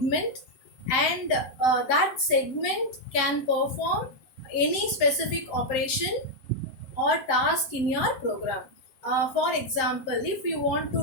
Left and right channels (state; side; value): late; right; 7.5 ms